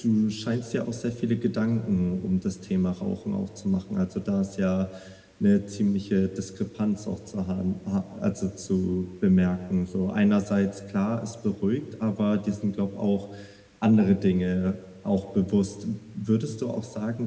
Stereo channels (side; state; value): both; identical; correlation 1.00